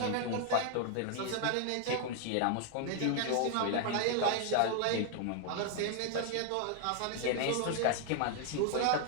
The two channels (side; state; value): both; different; correlation 0.00